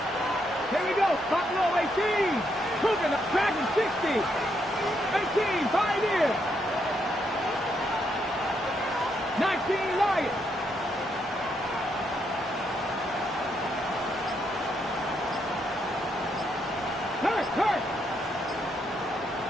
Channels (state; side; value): normal; both; correlation 0.77